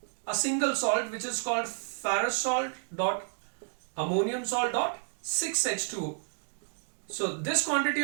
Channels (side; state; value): left; silent; 57 dB below the other